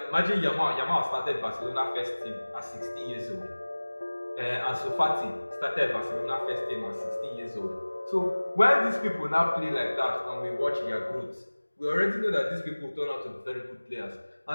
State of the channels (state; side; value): inverted; both; correlation -1.00